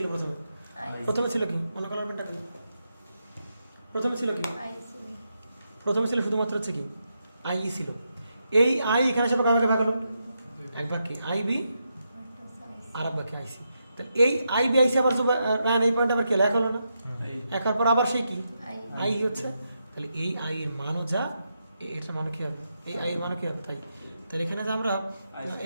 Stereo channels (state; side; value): inverted; both; correlation -0.84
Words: প্রথমে, আই প্রথমে ছিল কি মনে করার পেনটা কি, প্রথমে ছিল কি, আইসি প্রথমে ছিল শুধুমাত্র হচ্ছে কি আই ই ছিল, এই আই এখানে সব কাকে ভাগ হলো, এক ভাগ কি আই বি আর এক ভাগ কি আইসি, তাহলে এই আই বি আইসি আবার রান এই পয়েন্ট আবার কি লেখা হলো না, একার পর আবার সেই কি আই আই হচ্ছে, তাহলে এই আই এর মানও যা এটার মানও কি হবে, এই আই এর মানও কি হবে তাই, তাহলে এখানে যে আমরা